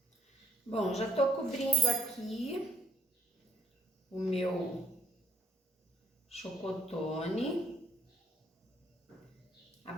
Bom, já tô cobrindo aqui o meu chocotone. A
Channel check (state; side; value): normal; both; correlation 0.71